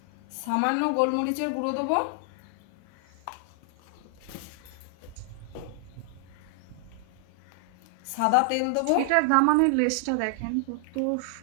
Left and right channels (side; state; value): both; different; correlation 0.00